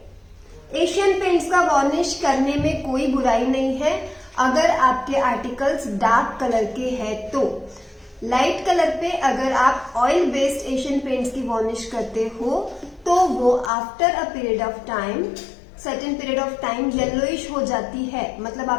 एशियन पेंट्स का वॉर्निश करने में कोई बुराई नहीं है अगर आपके आर्टिकल्स डार्क कलर के हैं तो। लाइट कलर पे अगर आप ऑयल बेस्ड एशियन पेंट्स की वॉर्निश करते हो तो वो after a period of time, certain period of time yellowish हो जाती है, मतलब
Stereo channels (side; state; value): right; drops out; at 13.7 s